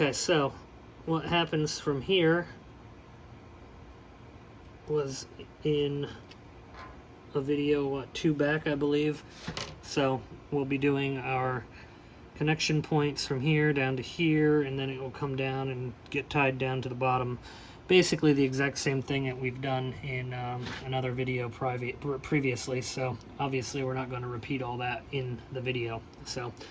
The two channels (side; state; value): both; identical; correlation 1.00